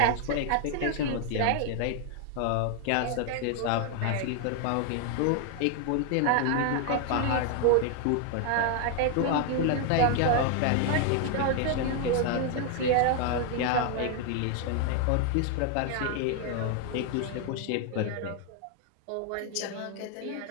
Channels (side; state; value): both; different; correlation 0.00